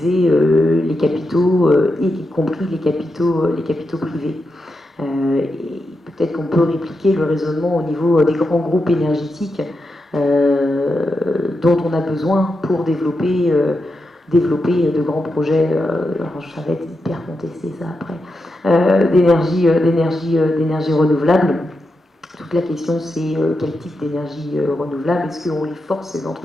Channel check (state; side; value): normal; both; correlation 0.87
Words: les capitaux, y compris les capitaux privés. Et peut-être qu'on peut répliquer le raisonnement au niveau des grands groupes énergétiques dont on a besoin pour développer de grands projets, alors ça va être hyper contesté ça après, d'énergie renouvelable. Toute la question, c'est quel type d'énergie renouvelable? Est-ce qu'on les force, ces